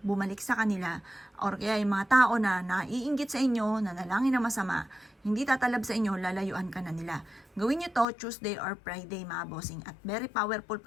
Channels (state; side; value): drops out; right; at 8.1 s